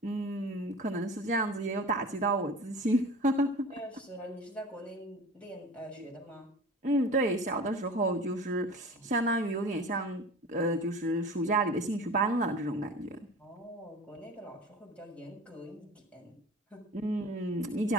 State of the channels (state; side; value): normal; both; correlation 0.37